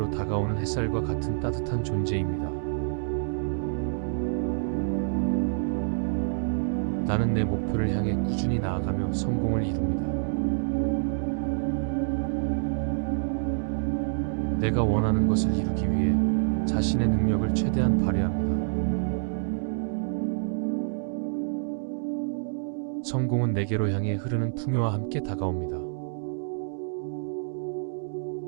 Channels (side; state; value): left; silent; digital silence